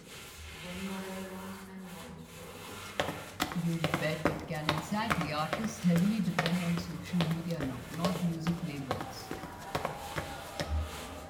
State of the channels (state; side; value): identical; both; correlation 1.00